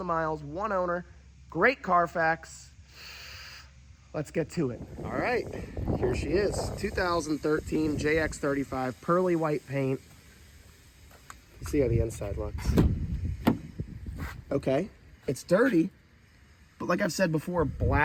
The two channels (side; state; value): both; identical; correlation 1.00